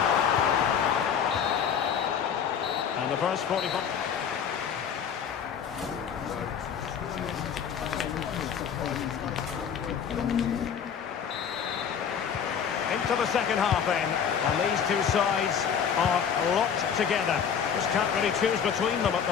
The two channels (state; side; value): quieter; right; 7.6 dB